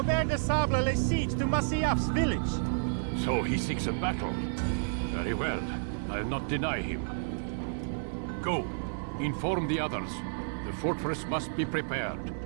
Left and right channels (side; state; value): left; silent; 57 dB below the other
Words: de Sable lays siege to Masyaf's village. So he seeks a battle. Very well. I'll not deny him. Go. Inform the others. The fortress must be prepared.